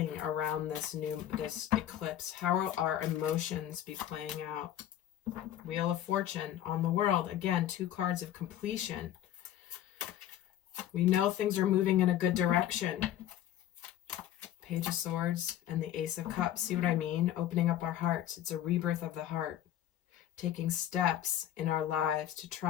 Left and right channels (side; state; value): right; quieter; 11.8 dB